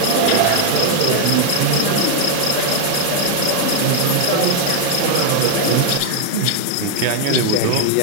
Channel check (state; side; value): different; both; correlation 0.00